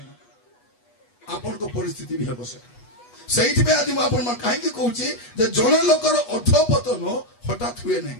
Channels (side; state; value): right; late; 8.2 ms